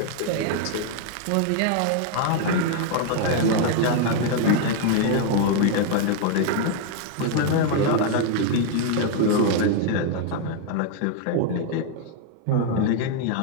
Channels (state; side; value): different; both; correlation 0.00